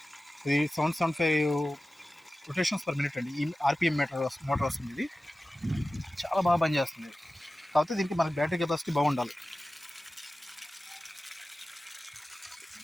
ఇది 775 రొటేషన్స్ పర్ మినిట్ అండి. ఈ RPM మోటార్ వస్తుంది. ఇది చాలా బాగా పనిచేస్తుంది. కాకపోతే దీనికి మనకి బ్యాటరీ కెపాసిటీ బాగుండాలి.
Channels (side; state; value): both; normal; correlation 0.95